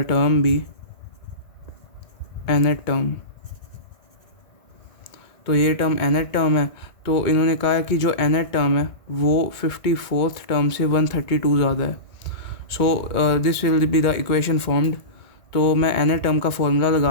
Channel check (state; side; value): late; right; 2.2 ms